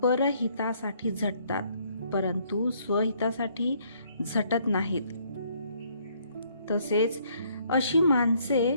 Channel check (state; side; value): inverted; both; correlation -0.66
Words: परहितासाठी झटतात, परंतु स्वहितासाठी झटत नाहीत. तसेच अशी